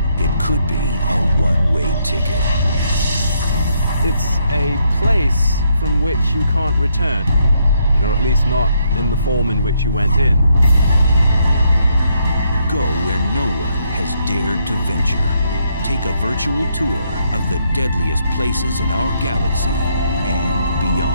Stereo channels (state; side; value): inverted; both; correlation -0.74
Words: it could be a one-way ticket. It's a place from which you can't return, or at least not in the form in which you went in. Go where no one has dared to venture. Take a virtual tour of the deadliest places in our galaxy and